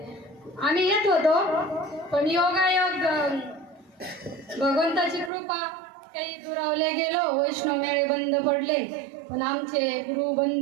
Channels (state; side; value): drops out; left; at 5.3 s